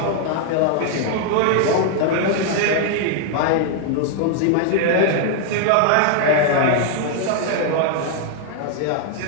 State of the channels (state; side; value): different; both; correlation 0.00